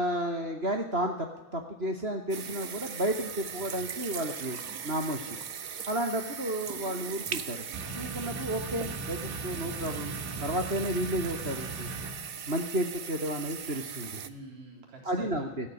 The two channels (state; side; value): late; left; 2.9 ms